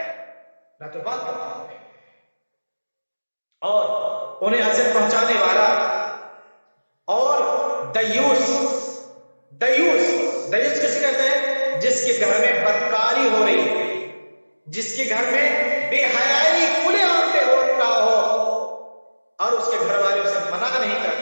نہ تو بات کرنے والے ہیں, اور انہیں اذیت پہنچانے والا. اور دیوس کسے کہتے ہیں؟ جس کے گھر میں بدکاری ہو رہی ہے, جس کے گھر میں بے حیائی کھلے عام پہ ہو رہا ہو اور اس کے گھر والے اسے منع نہیں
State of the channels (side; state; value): both; inverted; correlation -1.00